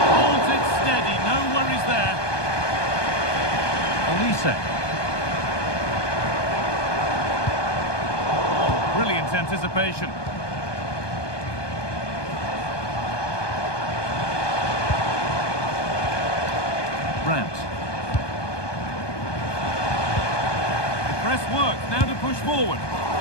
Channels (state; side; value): late; right; 1.2 ms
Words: Holds it steady. No worries there. Olise. Oh, brilliant anticipation. Brandt. The press works, now to push forward.